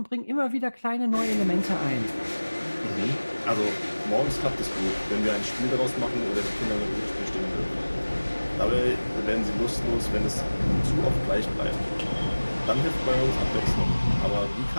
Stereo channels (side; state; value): both; inverted; correlation -1.00